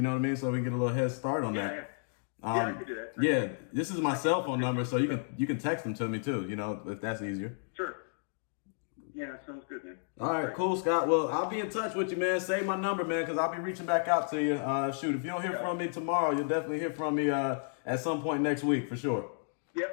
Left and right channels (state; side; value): silent; right; digital silence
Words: know what I mean? So we can get a little head start on that. Yeah. I can do that. Yeah, this is my cell phone number, so you can text them to me too. You know, if that's easier. Sure. Yeah, sounds good, man. All right, cool, Scott. Well, I'll be in touch with you, man. Save my number, man, because I'll be reaching back out to you. Shoot, if you don't hear from me tomorrow, you'll definitely hear from me at some point next week for sure.